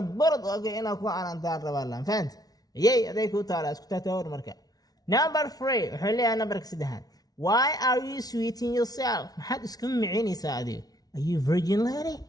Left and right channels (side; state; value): right; late; 0.19 ms